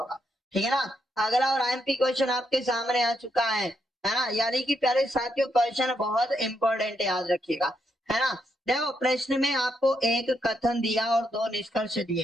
ठीक है ना। अगला और आईएमपी क्वेश्चन आपके सामने आ चुका है ना, यानी कि प्यारे साथियों क्वेश्चन बहुत इंपॉर्टेंट, याद रखिएगा, है ना। देखो प्रश्न में आपको एक कथन दिया और 2 निष्कर्ष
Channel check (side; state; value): both; normal; correlation 0.79